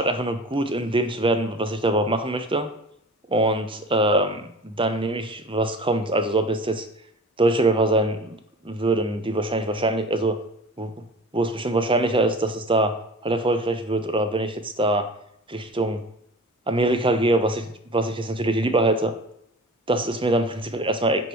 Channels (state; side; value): normal; both; correlation 0.38